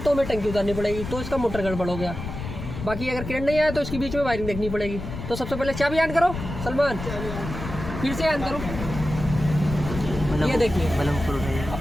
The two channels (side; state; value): left; noise; rumble, 8 dB below the sound